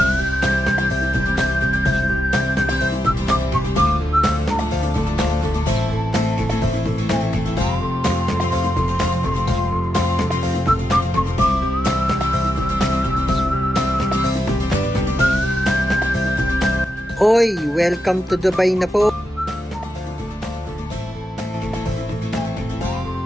Oy, welcome to Dubai na po.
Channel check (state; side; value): normal; both; correlation 0.85